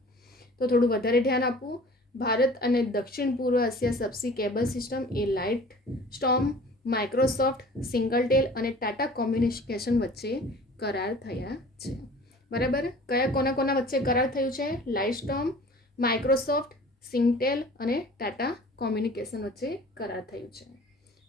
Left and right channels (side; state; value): both; normal; correlation 0.46